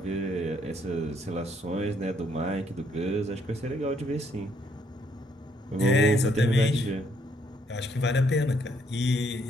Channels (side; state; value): both; normal; correlation 0.70